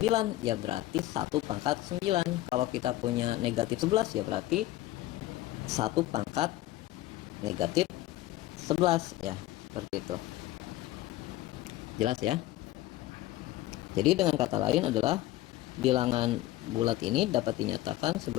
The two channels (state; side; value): quieter; right; 15.9 dB